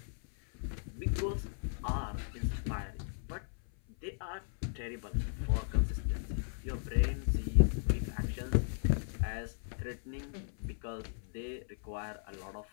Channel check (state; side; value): silent; right; 54 dB below the other